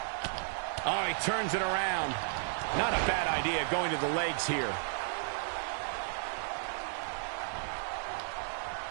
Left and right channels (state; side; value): silent; left; digital silence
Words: Oh, he turns it around. Not a bad idea going to the legs here.